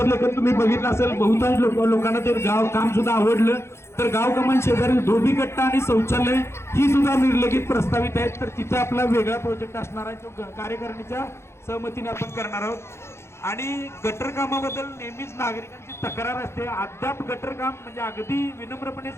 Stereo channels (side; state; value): right; late; 0.13 ms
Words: तुम्ही बघितलं असेल. बहुतांश लोकांना ते गाव काम सुद्धा आवडलं. तर गाव कमान शेजारी धोबी कट्टा आणि शौचालय ही सुद्धा निर्लगित प्रस्तावित आहेत. तर तिथे आपला वेगळा प्रोजेक्ट असणार आहे तो कार्यकारिणीच्या सहमतीने आपण करणार आहोत. आणि गटर कामाबद्दल नेहमीच नागरिकांची तक्रार असते. अद्याप गटर काम म्हणजे अगदी विनम्रपणे